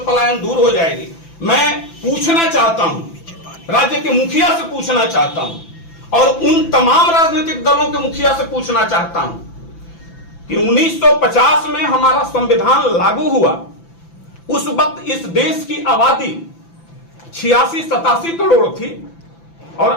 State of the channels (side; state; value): right; late; 5.9 ms